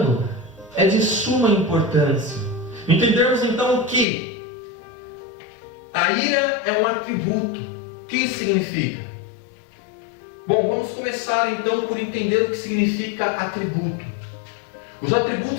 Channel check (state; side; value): drops out; right; at 4.0 s